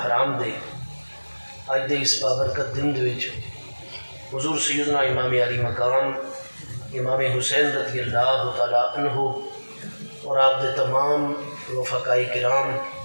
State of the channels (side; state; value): both; inverted; correlation -1.00